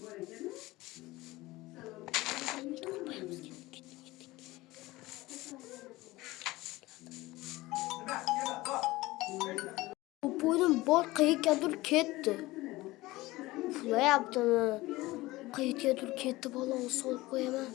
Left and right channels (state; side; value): quieter; right; 19.4 dB